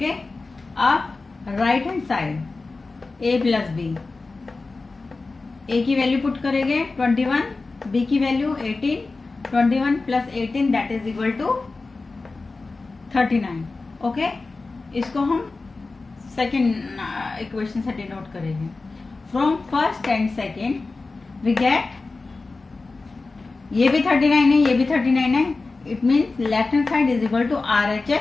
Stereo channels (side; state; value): right; quieter; 3.7 dB